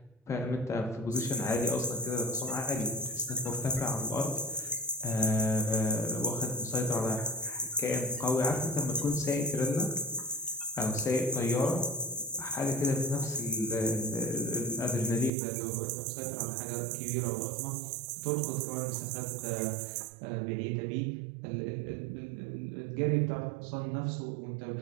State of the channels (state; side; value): drops out; left; at 15.3 s